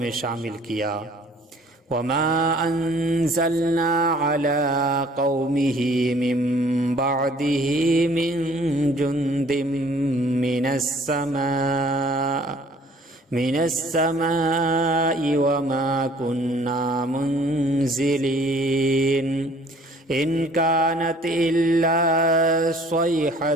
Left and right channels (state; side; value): normal; both; correlation 0.55